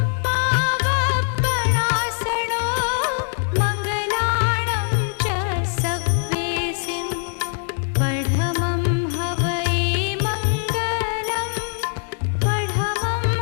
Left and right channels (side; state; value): right; silent; 61 dB below the other